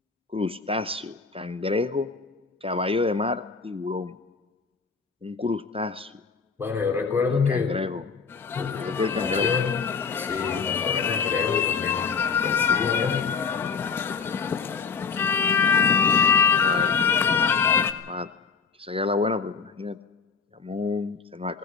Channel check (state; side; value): quieter; right; 5.5 dB